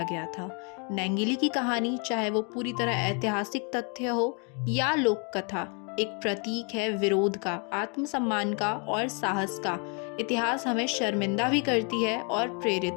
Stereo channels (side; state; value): right; quieter; 36.2 dB